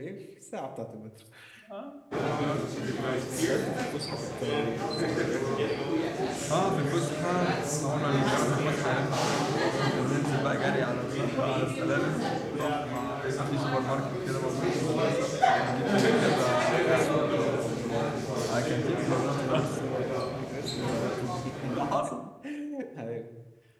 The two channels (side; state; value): both; identical; correlation 1.00